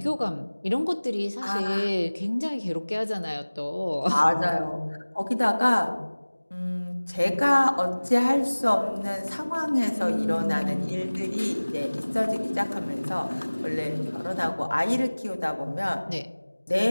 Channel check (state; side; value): inverted; both; correlation -1.00